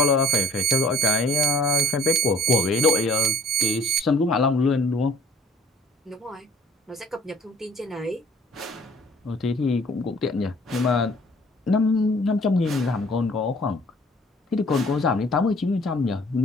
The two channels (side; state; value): both; normal; correlation 0.54